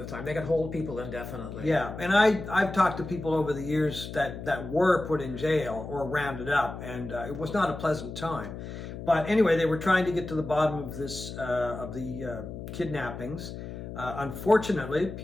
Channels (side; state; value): left; noise; hum, 9 dB below the sound